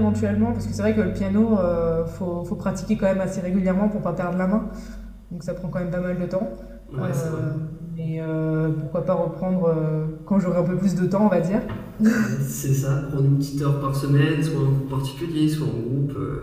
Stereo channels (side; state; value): both; identical; correlation 1.00